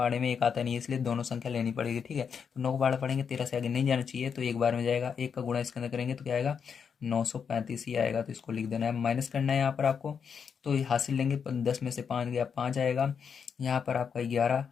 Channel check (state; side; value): quieter; right; 6.7 dB